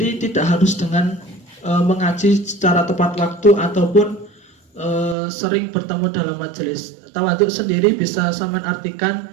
tidak harus dengan mengaji secara tepat waktu ataupun sering bertemu dalam majelis. Tawaduk sendiri bisa sampean artikan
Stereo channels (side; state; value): left; drops out; at 5.2 s